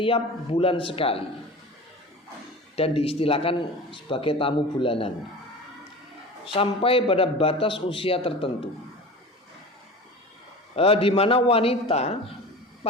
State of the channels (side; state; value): both; normal; correlation 0.34